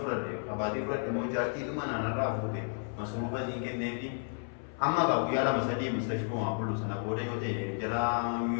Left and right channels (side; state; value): right; silent; 56 dB below the other